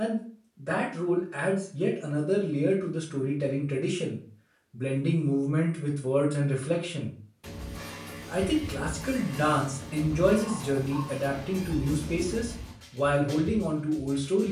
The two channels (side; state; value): both; identical; correlation 1.00